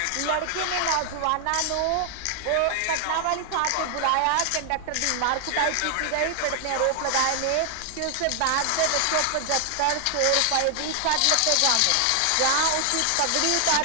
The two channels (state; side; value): different; both; correlation 0.00